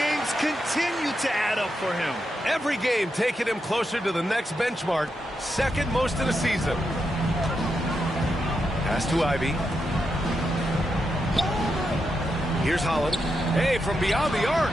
continue to add up for him. Every game taking him closer to the next benchmark. Second most in the season. Pass to Ivy. Here's Holland. Hey, from beyond the arc.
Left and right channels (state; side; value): normal; both; correlation 0.85